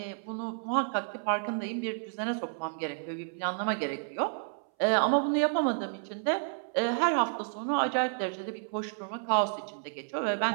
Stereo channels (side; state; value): left; silent; 57 dB below the other